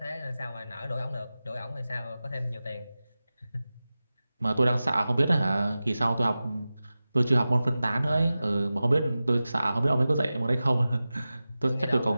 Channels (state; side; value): inverted; both; correlation -0.95